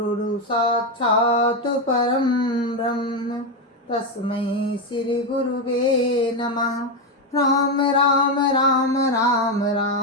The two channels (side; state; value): both; normal; correlation 0.08